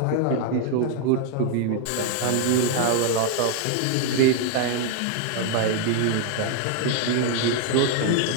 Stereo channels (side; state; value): both; different; correlation 0.00